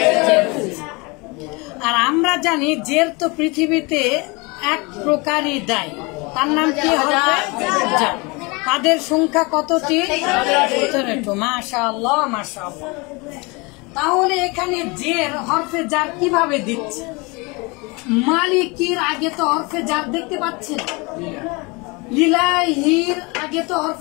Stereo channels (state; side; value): quieter; right; 27.3 dB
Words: জের হয়েছে। আর আমরা জানি জের তো পৃথিবীতে এক প্রকারই দায়, তার নাম কি হবে? জার। তাদের সংখ্যা কতটি? 17। মাশাআল্লাহ মাশাআল্লাহ। তাহলে এখানে জের হরফে জার কিভাবে দিচ্ছে? মালিকির আগে তো হরফে জার দেখতে পাচ্ছি না, লিলাহির আগে তো